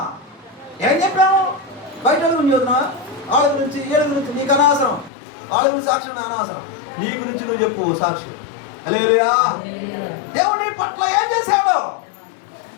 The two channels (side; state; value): right; drops out; at 5.1 s